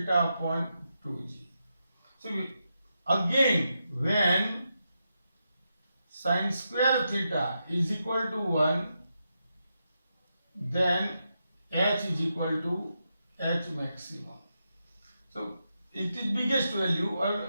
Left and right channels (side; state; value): both; inverted; correlation -0.85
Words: upon 2G. So again, when sin square theta is equal to 1, then H is equal to H maximum. So it is biggest value or